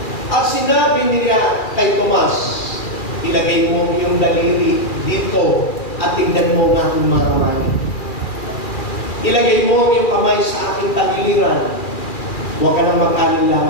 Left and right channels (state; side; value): late; right; 2.4 ms